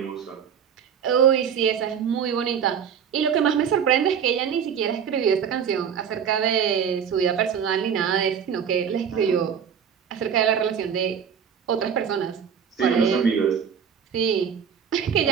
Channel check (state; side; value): quieter; left; 7.7 dB